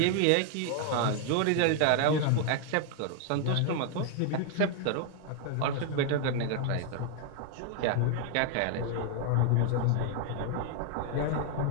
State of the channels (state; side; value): different; both; correlation 0.00